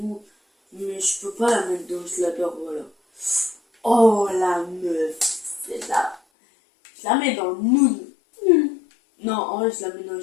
Mais je peux pas la mettre dans je l'adore, voilà. Oh la meuf, c'est là. Je la mets dans le nul. Non, en vrai, je la mets dans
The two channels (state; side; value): drops out; right; at 6.2 s